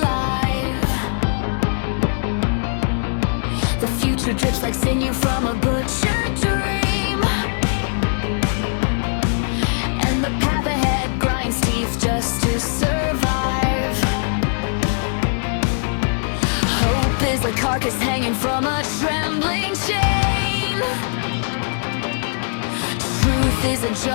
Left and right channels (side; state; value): right; silent; digital silence